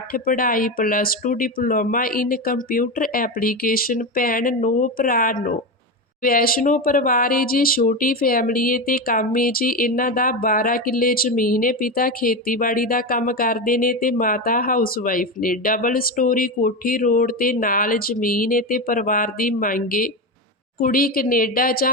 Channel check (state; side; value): normal; both; correlation 0.16